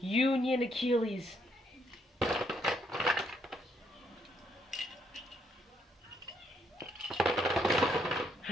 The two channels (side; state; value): both; normal; correlation 0.73